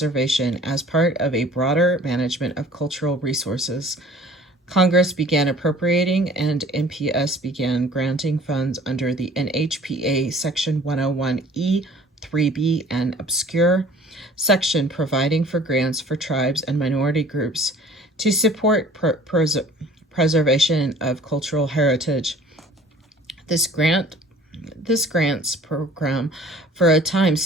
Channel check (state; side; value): normal; both; correlation 0.50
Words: as part of a broader management of cultural resources. Congress began appropriating, and NPS began granting funds under the NHPA Section 101E, 3B, and obscure section providing for grants for tribes and minority groups to support preservation of cultural heritage. This grants program for a time